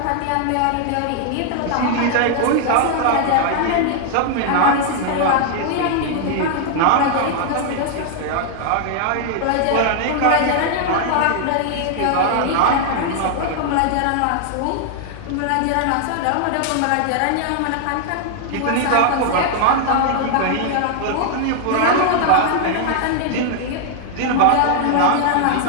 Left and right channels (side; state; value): both; different; correlation 0.00